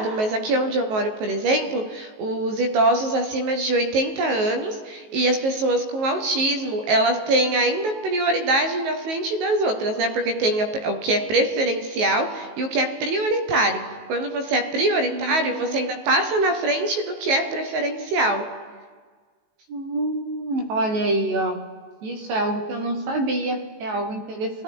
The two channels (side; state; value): left; late; 19 ms